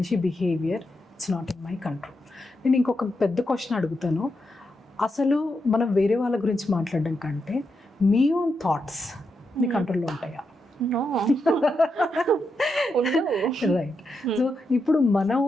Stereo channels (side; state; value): both; normal; correlation 0.84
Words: behaviour it's not in my control. నేను ఇంకొక పెద్ద క్వశ్చన్ అడుగుతాను. అసలు మనం వేరే వాళ్ళ గురించి మాట్లాడడం కంటే మీ ఓన్ థాట్స్ మీ కంట్రోల్లో ఉంటాయా? రైట్. సో ఇప్పుడు మన